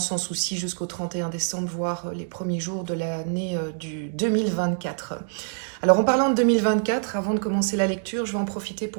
souci, jusqu'au 31 décembre, voire les premiers jours de l'année du 2024. Alors en parlant de 2024, avant de commencer la lecture, je vais en profiter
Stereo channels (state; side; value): silent; left; digital silence